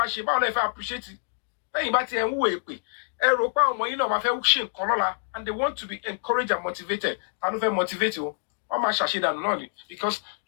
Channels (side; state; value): right; silent; digital silence